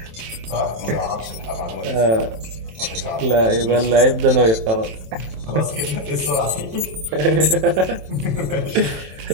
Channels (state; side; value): late; left; 27 ms